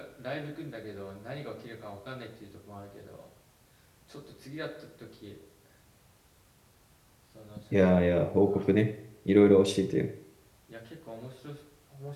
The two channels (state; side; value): identical; both; correlation 1.00